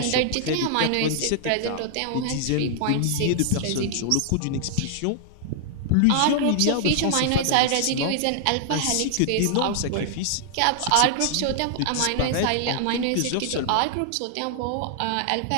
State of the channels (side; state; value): both; different; correlation 0.00